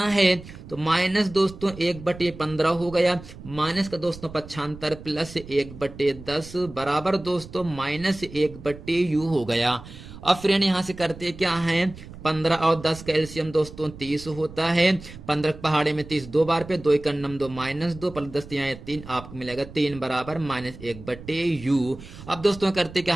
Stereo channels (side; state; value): right; noise; rumble, 16 dB below the sound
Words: है। तो माइनस दोस्तों 1/15 हो गया, माइनस का दोस्तों पक्षांतर प्लस 1/10 बराबर दोस्तों -1/u हो गया। अब फ्रेंड यहां से करते क्या है, 15 और 10 का एलसीएम दोस्तों 30 होता है। 15 पहाड़े में 30 दो बार पे, 2 एकन्नम 2 -2 प्लस 10 यहाँ 3, आपको मिलेगा 3 बराबर -1/u। अब दोस्तों करते क्या